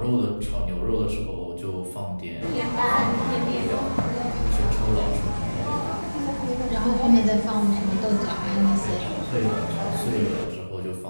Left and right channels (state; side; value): inverted; both; correlation -1.00